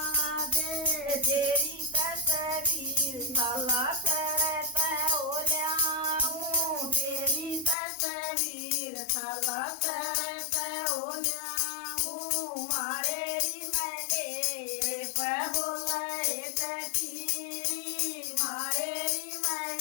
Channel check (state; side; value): drops out; right; at 7.8 s